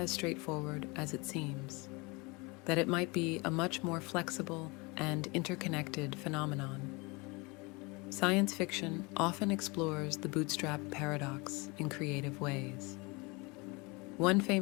straightforward as it seems, that it might be a much more flexible and interconnected phenomenon. Science fiction often explores the bootstrap paradox in creative ways. One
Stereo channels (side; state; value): right; quieter; 27.0 dB